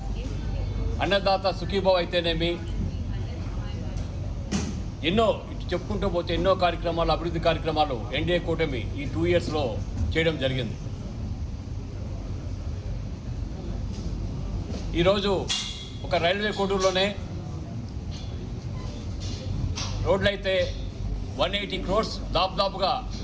అన్నదాత సుఖీభావ్ అయితేనేమి, ఎన్నో చెప్పుకుంటూ పోతే ఎన్నో కార్యక్రమాలు, అభివృద్ధి కార్యక్రమాలు ఎన్డీఏ కూటమి ఈ 2 yearsలో చేయడం జరిగింది. ఈరోజు ఒక రైల్వే కోడూరులోనే రోడ్లు అయితే 180 crores, దాదాపుగా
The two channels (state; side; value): identical; both; correlation 1.00